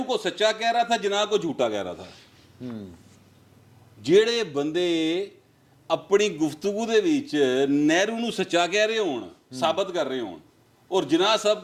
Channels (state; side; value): identical; both; correlation 1.00